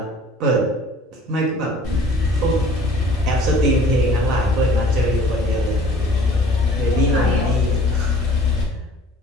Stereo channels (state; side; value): normal; both; correlation 0.51